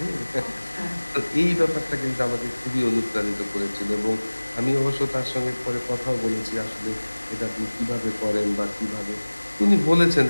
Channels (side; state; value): both; inverted; correlation -1.00